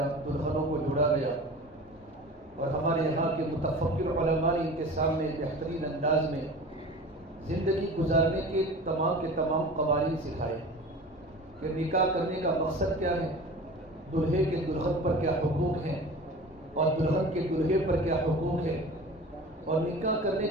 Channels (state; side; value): normal; both; correlation 0.38